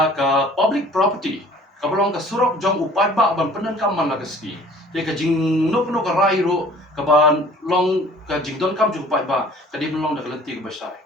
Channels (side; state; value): both; normal; correlation 0.50